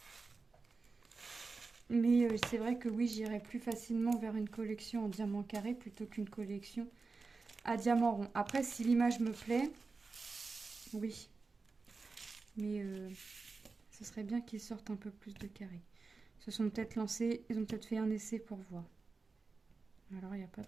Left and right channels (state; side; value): quieter; left; 4.1 dB